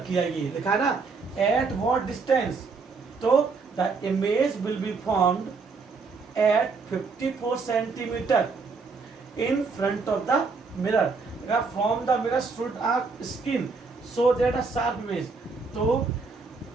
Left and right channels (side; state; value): left; quieter; 4.5 dB